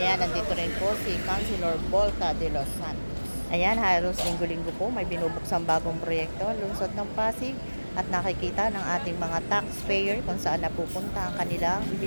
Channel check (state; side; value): inverted; both; correlation -1.00